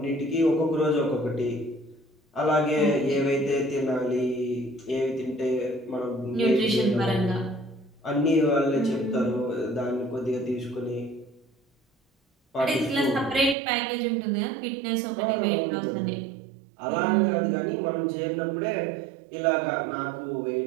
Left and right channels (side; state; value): left; drops out; at 13.6 s